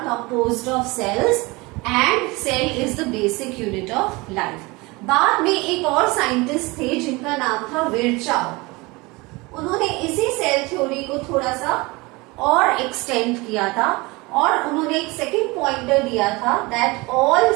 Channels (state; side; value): quieter; left; 24.2 dB